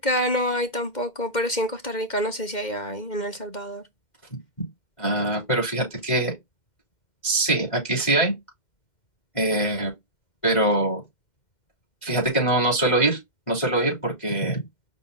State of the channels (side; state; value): right; late; 2.1 ms